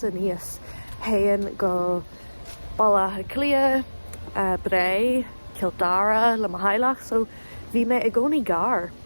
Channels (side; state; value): both; inverted; correlation -1.00